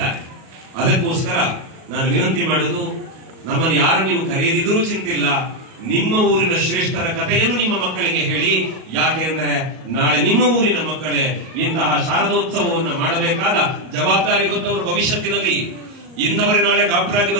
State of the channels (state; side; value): late; left; 37 ms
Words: ಅದಕ್ಕೋಸ್ಕರ ನಾನು ವಿನಂತಿ ಮಾಡುವುದು, ನಮ್ಮನ್ನು ಯಾರು ನೀವು ಕರೆಯದಿದ್ರೂ ಚಿಂತಿಲ್ಲ, ನಿಮ್ಮ ಊರಿನ ಶ್ರೇಷ್ಠರ ಕಥೆಯನ್ನು ನಿಮ್ಮ ಮಕ್ಕಳಿಗೆ ಹೇಳಿ. ಯಾಕೆ ಅಂದ್ರೆ ನಾಳೆ ನಿಮ್ಮ ಊರಿನ ಮಕ್ಕಳೇ ಇಂತಹ ಶಾರದೋತ್ಸವವನ್ನು ಮಾಡಬೇಕಾದ ಜವಾಬ್ದಾರಿ ಹೊತ್ತವರು ಭವಿಷ್ಯತ್ತಿನಲ್ಲಿ. ಇಂಥವರೇ ನಾಳೆ ಡಾಕ್ಟರ್ ಆಗಿ